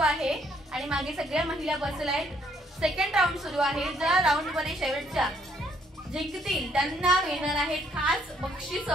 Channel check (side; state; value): both; normal; correlation 0.67